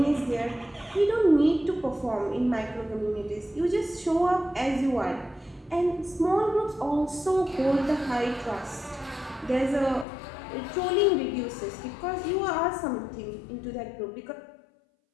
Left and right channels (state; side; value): drops out; right; at 10.1 s